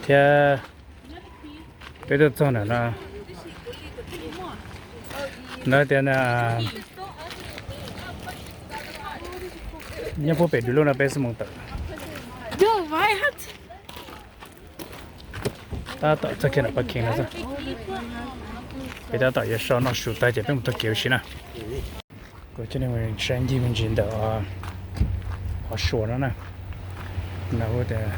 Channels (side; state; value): both; identical; correlation 1.00